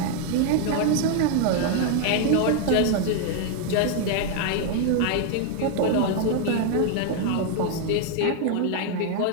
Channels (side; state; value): both; different; correlation 0.00